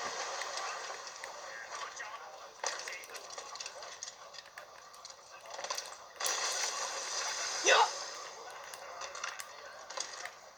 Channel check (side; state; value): both; normal; correlation 0.97